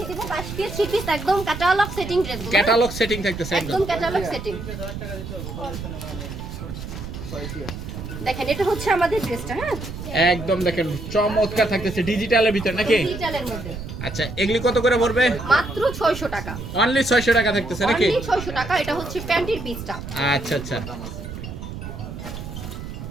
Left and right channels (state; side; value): noise; right; rumble, 9 dB below the sound